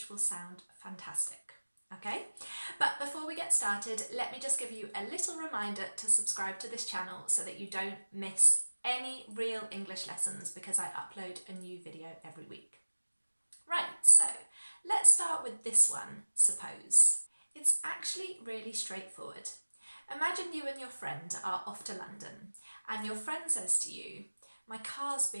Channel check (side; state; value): both; inverted; correlation -1.00